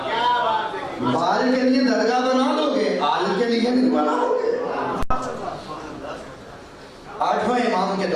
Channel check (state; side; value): identical; both; correlation 1.00